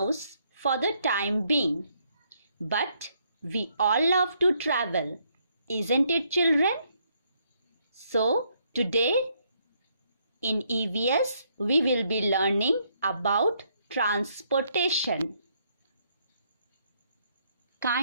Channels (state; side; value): inverted; both; correlation -0.72